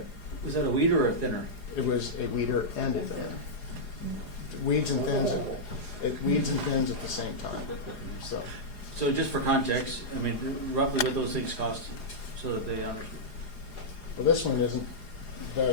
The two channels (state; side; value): late; right; 4.9 ms